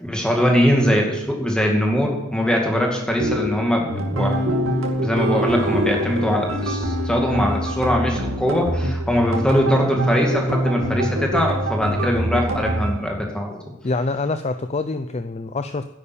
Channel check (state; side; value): normal; both; correlation 0.72